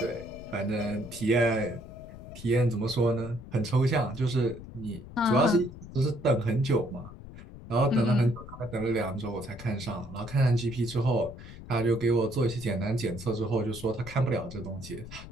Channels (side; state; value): left; noise; rumble, 14 dB below the sound